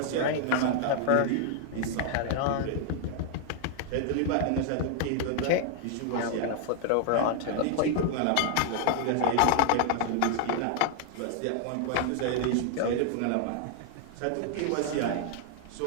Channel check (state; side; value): different; both; correlation 0.00